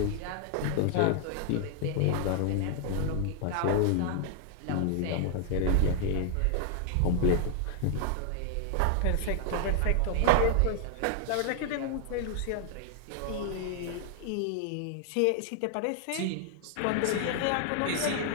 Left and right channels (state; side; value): different; both; correlation 0.00